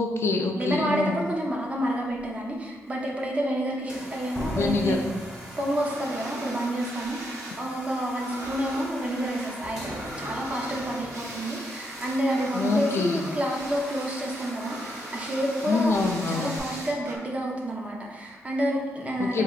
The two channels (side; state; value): both; normal; correlation 0.78